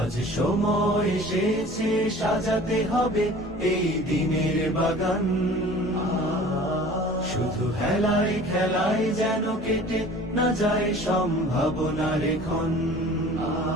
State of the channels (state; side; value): normal; both; correlation 0.45